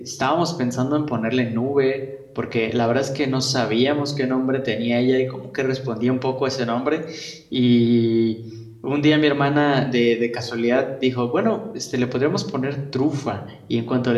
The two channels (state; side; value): identical; both; correlation 1.00